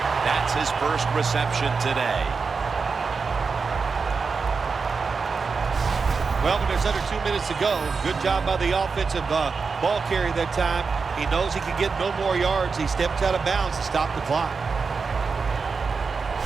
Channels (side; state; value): left; quieter; 4.9 dB